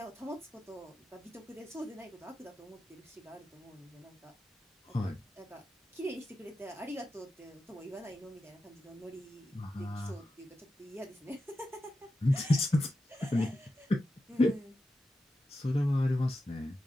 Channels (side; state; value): both; normal; correlation 0.90